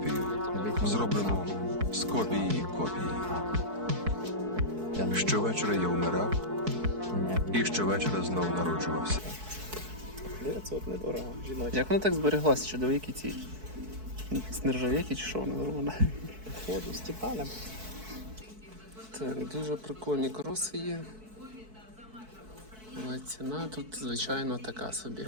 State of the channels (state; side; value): late; left; 4.6 ms